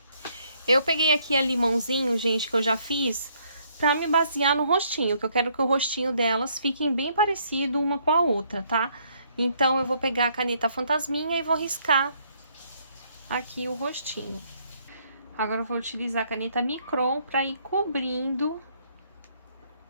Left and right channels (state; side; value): inverted; both; correlation -0.68